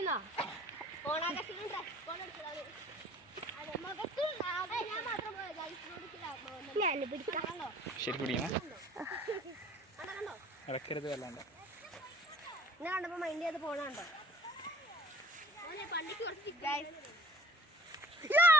ഓണാകർഷണം ഡ്രസ് കോഡ് എടുത്തതാണ്. ഞാൻ പിടിക്കാം. ശരി പിടിക്കണം, ഇടക്കരുത് വല്ലാണ്ട്. ഞാൻ കണ്ടപ്പോ മൈൻഡ് ചെയ്ത് പോണുണ്ടോ?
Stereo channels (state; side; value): normal; both; correlation 0.51